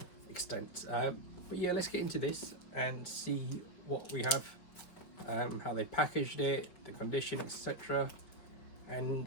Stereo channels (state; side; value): late; right; 5.5 ms